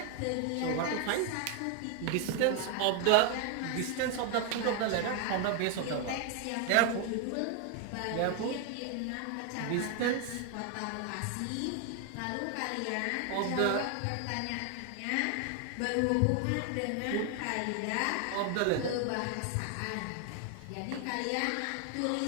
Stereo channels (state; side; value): different; both; correlation 0.00